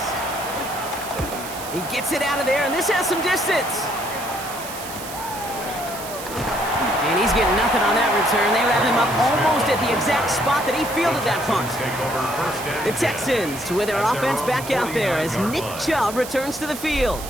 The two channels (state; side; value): noise; right; hiss, 12 dB below the sound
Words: He gets it out of there, and this has some distance. And he's getting nothing on that return. They wrap him up almost at the exact spot that he fielded that punt. The Texans with their offense back out there as Nick Chubb returns to the field.